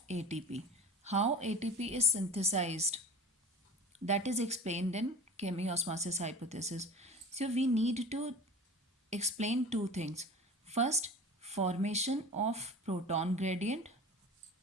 ATP. How ATP is synthesized, that is explained in chemiosmosis hypothesis. So we need to explain two things. First, formation of proton gradient,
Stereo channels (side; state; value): both; normal; correlation 0.36